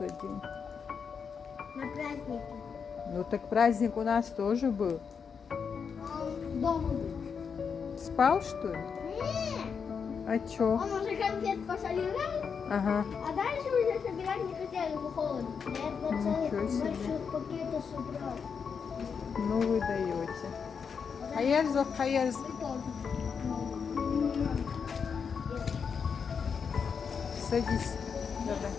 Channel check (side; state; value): right; quieter; 6.2 dB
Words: день? На празднике. Ну так праздник у нас тоже был. Дома был. Спал, что ли? Нет. А чё? Он уже конфет пособирал, Ага. а дальше уже собирать не хотели, его холодно. Я два целых Ничего себе. больших пакета собрал. Ну вы даете. Хайерзов, хайерз. Вы тоже. Садись. Давай.